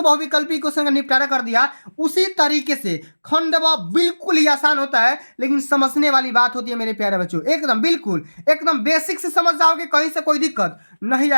क्वेश्चन का निपटारा कर दिया, उसी तरीके से खंड ब बिल्कुल ही आसान होता है, लेकिन समझने वाली बात होती है मेरे प्यारे बच्चों। एकदम बिल्कुल एकदम बेसिक से समझ जाओगे, कहीं से कोई दिक्कत नहीं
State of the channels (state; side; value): inverted; both; correlation -1.00